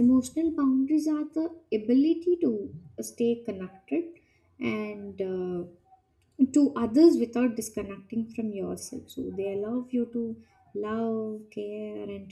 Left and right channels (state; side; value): identical; both; correlation 1.00